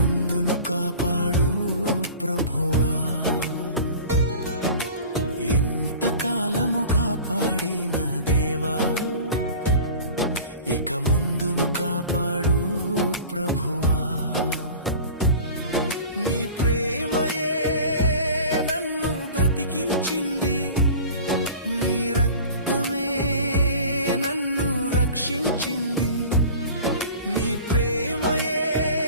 కాపాడు ప్రభువా. ఇంతకాలము కాపాడిన దేవా, ఇక ముందును కాపాడు ప్రభువా. నీ ప్రేమయే నన్ను బ్రతికించింది, నీ రక్తమే నన్ను రక్షించింది. నీ ప్రేమయే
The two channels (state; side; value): inverted; both; correlation -0.40